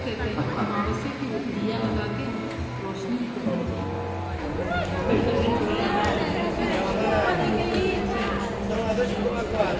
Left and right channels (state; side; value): identical; both; correlation 1.00